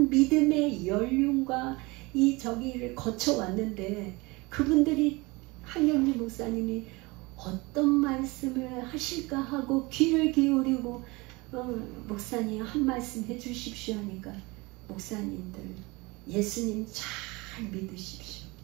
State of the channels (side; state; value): left; quieter; 24.4 dB